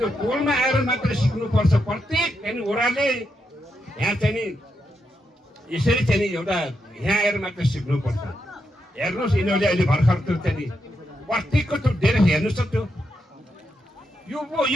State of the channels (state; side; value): normal; both; correlation 0.83